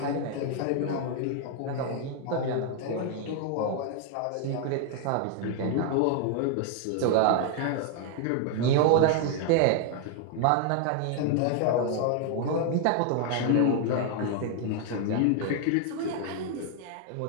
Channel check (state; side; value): different; both; correlation 0.00